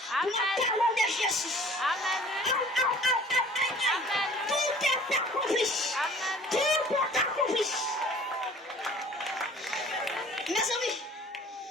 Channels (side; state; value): both; normal; correlation 0.49